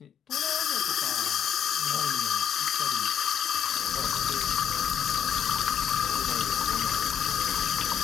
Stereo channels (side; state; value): right; quieter; 8.8 dB